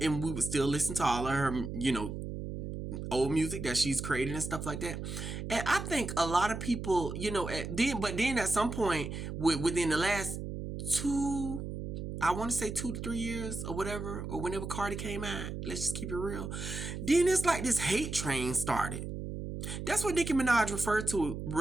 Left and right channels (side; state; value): right; noise; hum, 6 dB below the sound